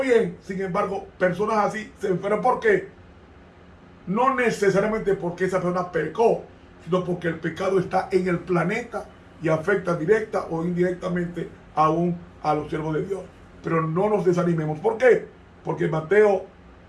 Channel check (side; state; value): both; identical; correlation 1.00